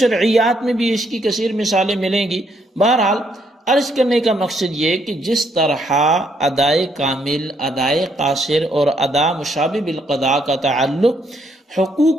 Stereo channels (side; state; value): both; normal; correlation 0.72